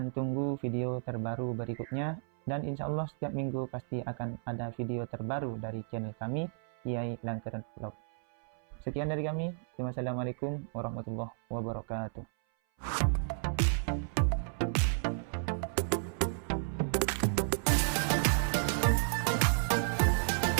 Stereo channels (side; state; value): left; silent; 56 dB below the other